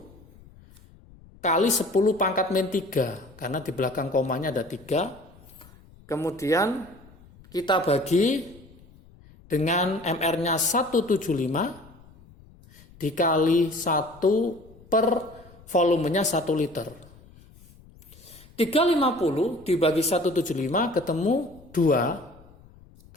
kali 10 pangkat min 3, karena di belakang komanya ada 3. Kemudian kita bagi dengan MR-nya 175 dikali 1 per volumenya 1 liter. 350 dibagi 175 ketemu 2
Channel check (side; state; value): left; noise; rumble, 24 dB below the sound